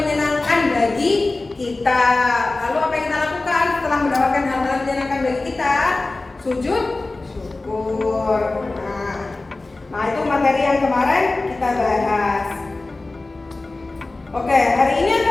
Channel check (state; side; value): quieter; right; 3.2 dB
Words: bagi kita. Lalu apa yang kita lakukan setelah mendapatkan hal-hal yang menyenangkan bagi kita? Sujud syukur. Nah, itu materi yang kemarin kita bahas. Oke, hari ini